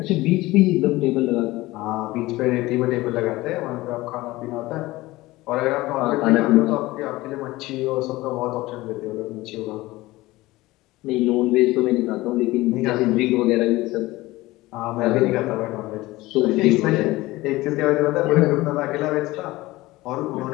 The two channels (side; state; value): right; quieter; 19.1 dB